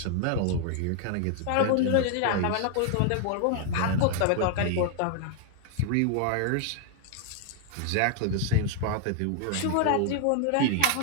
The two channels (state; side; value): different; both; correlation 0.00